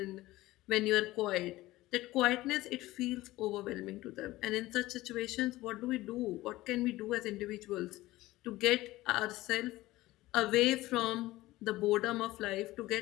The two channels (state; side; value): quieter; right; 17.8 dB